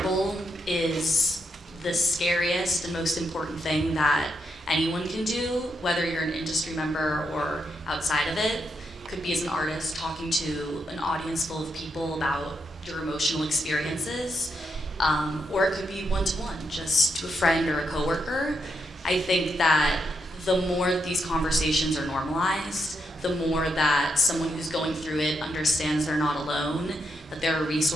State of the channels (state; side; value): normal; both; correlation 0.81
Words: is the scariest and most important thing that anyone can do, whether you're an industry member or outside of it. Could be as an artist talking to an audience full of people about your emotional experiences, or it could be one-to-one, just to a friend or a coworker. I think that the more these conversations are normalized, the more that someone who's going through it understands they're not alone, that there are